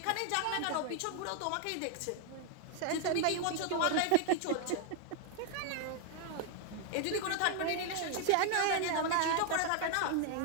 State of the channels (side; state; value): both; different; correlation 0.00